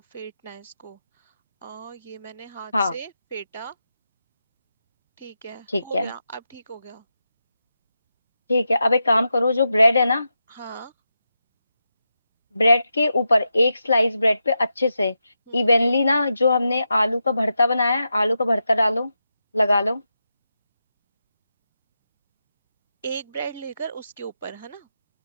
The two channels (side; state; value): both; inverted; correlation -0.88